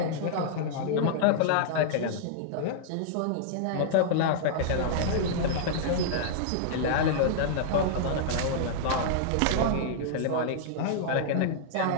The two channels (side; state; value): both; different; correlation -0.01